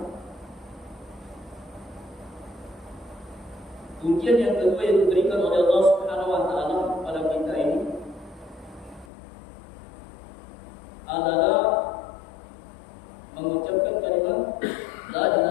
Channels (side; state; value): right; drops out; at 9.1 s